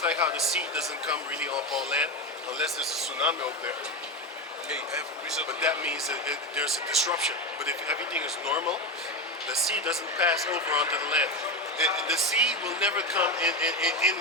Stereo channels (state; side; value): normal; both; correlation 0.16